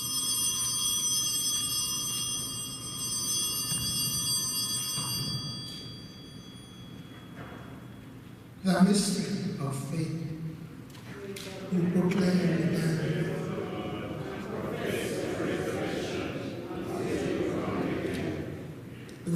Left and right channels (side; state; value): both; identical; correlation 1.00